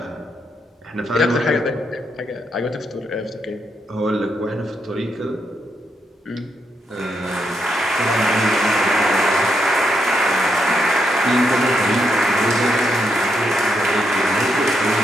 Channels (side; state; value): both; normal; correlation 0.79